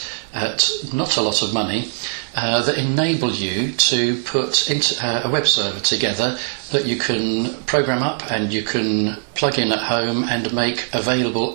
at not a lot of money that enable you to put a web server together that you can program up and you can plug in at home and make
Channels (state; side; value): silent; left; 65 dB below the other